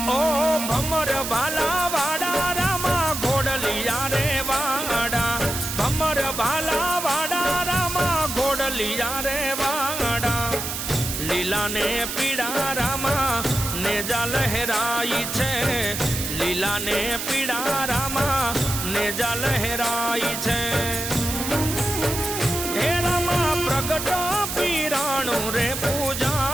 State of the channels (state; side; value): noise; right; hiss, 4 dB below the sound